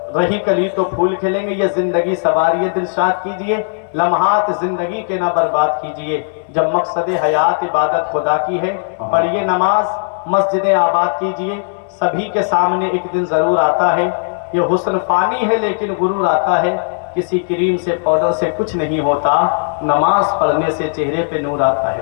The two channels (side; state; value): right; silent; digital silence